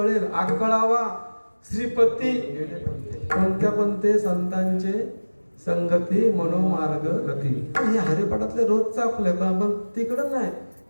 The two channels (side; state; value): both; inverted; correlation -1.00